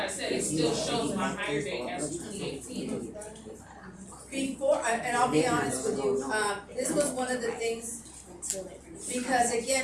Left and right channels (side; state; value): both; identical; correlation 1.00